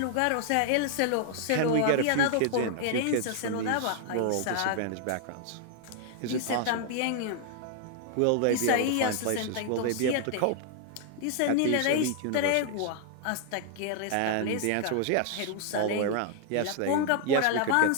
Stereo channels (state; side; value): different; both; correlation 0.00